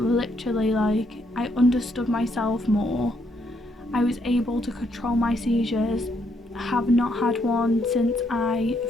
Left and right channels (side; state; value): both; normal; correlation 0.74